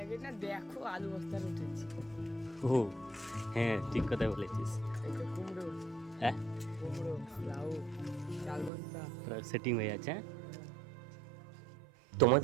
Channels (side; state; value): left; drops out; at 8.7 s